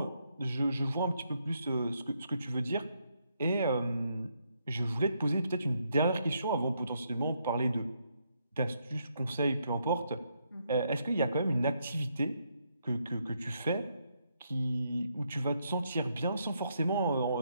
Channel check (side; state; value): both; inverted; correlation -0.76